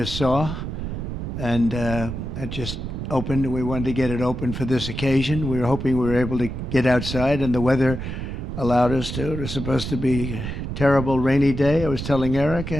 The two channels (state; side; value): noise; right; rumble, 6 dB below the sound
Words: saw, and it just opened. We wanted to get it open for this occasion. We were hoping we were able to get outside, and the weather allowed us to. It was supposed to be a terrible rainy day. I was telling Eric,